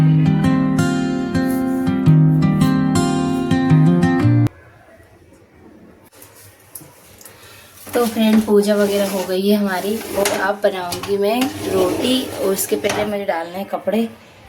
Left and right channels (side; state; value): both; identical; correlation 1.00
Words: तो फ्रेंड पूजा वगैरह हो गई है हमारी और अब बनाऊंगी मैं रोटी। और उसके पहले मुझे डालने हैं कपड़े,